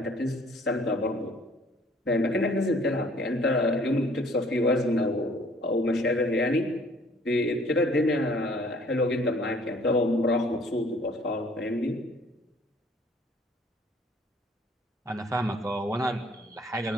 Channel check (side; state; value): both; normal; correlation 0.57